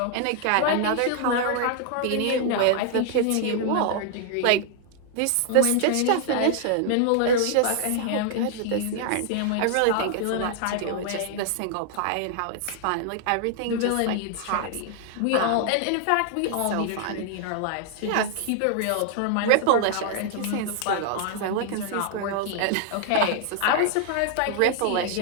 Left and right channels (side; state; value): both; different; correlation 0.00